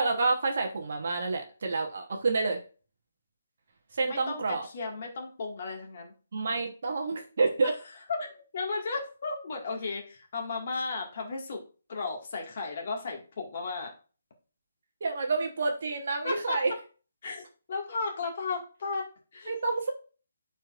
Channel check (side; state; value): both; inverted; correlation -0.81